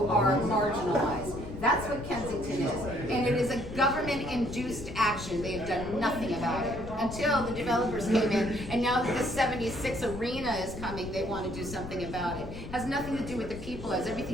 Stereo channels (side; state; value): left; noise; rumble, 11 dB below the sound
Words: are marginalized. That's what Kensington is. And it is a government-induced action. They have done nothing about it until the developers came in. And now that the 76 arena is coming, they want to do something about it. Has nothing to do with the people, has